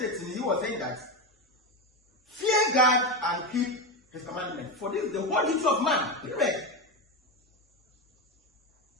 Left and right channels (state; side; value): normal; both; correlation 0.15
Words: 18, he was saying that fear God and keep his commandments, for this is the whole duty of man. Period.